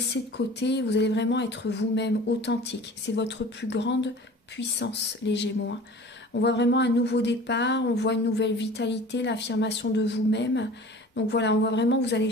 de côté. Vous allez vraiment être vous-même authentique. C'est votre plus grande puissance, les Gémeaux. Hein. On voit vraiment un nouveau départ. On voit une nouvelle vitalité, l'affirmation de vous-même. Donc voilà, on voit vraiment que vous allez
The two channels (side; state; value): both; normal; correlation 0.42